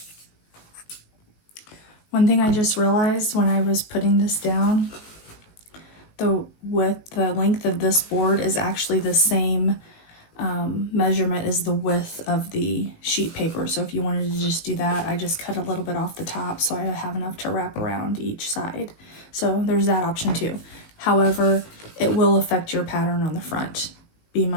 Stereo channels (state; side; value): late; right; 19 ms